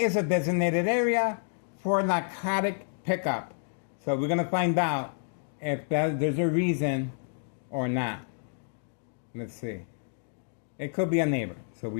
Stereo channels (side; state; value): right; silent; digital silence